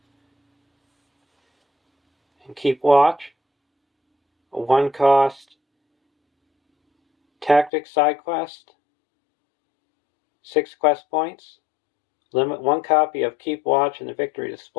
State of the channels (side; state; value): right; drops out; at 7.7 s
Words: And Keep Watch, a 1-cost tactics side quest, 6 quest points, limit 1 copy of Keep Watch in the victory